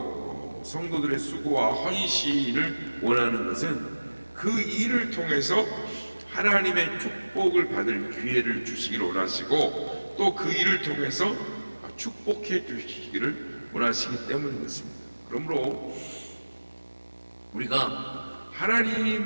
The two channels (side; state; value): both; inverted; correlation -1.00